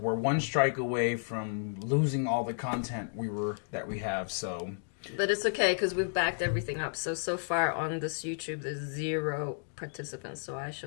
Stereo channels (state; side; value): silent; right; digital silence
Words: one strike away from losing all the content that we have. So, but it's okay because we've backed everything up. So far on this YouTube, there's 0 participants. So I